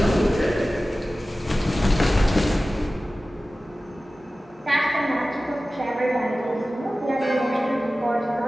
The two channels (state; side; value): normal; both; correlation 0.96